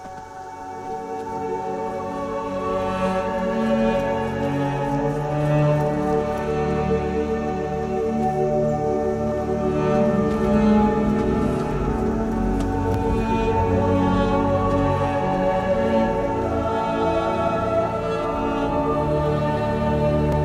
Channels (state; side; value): identical; both; correlation 1.00